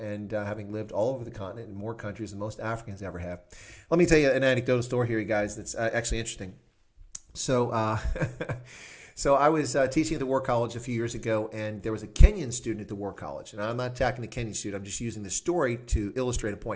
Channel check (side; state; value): both; identical; correlation 1.00